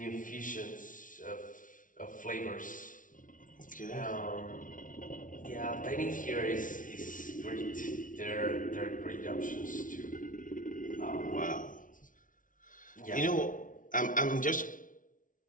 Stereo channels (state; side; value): late; right; 0.38 ms